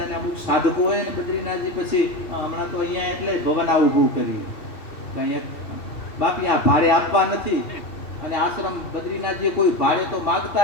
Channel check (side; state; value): right; late; 3.1 ms